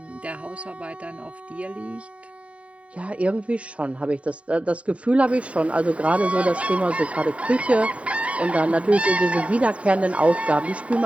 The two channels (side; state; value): left; late; 0.065 ms